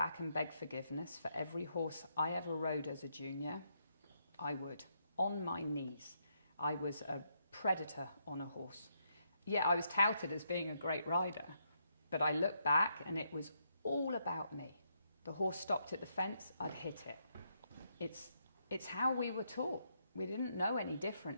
and beg forgiveness for every horse I ever rode as a junior, I would. On my knees. I was a predator on a horse. Yeah, I was touted as being a great rider, but I look back and it was all about me. The horse stopped at the fence, I'd hit it. It's how we were taught. We didn't know any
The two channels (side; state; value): both; inverted; correlation -0.77